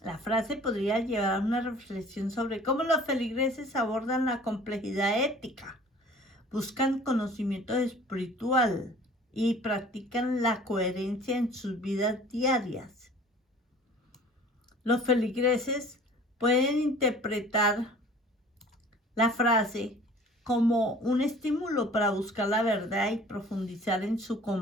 La frase podría llevar a una reflexión sobre cómo los feligreses abordan la complejidad ética, buscan conocimiento espiritual y practican la coherencia en sus vidas diarias. Los feligreses pueden interpretar la frase como un estímulo para buscar la verdad y profundizar en su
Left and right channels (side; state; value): both; normal; correlation 0.48